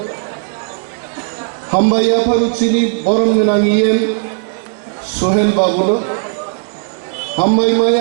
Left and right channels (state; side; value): silent; left; 70 dB below the other